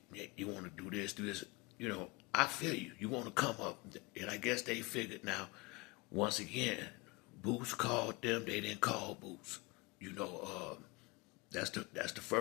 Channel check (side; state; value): right; quieter; 25.3 dB